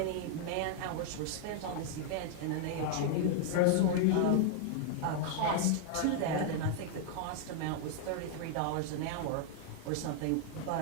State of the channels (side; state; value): both; different; correlation -0.01